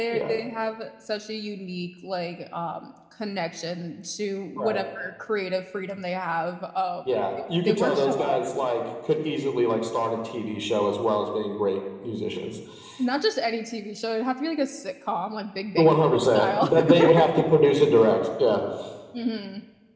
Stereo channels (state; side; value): identical; both; correlation 1.00